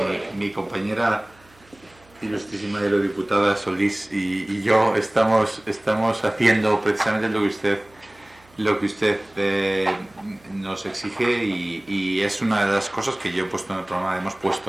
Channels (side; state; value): right; noise; hum, 29 dB below the sound